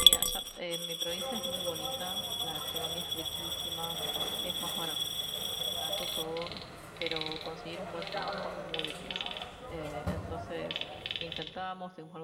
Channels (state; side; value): identical; both; correlation 1.00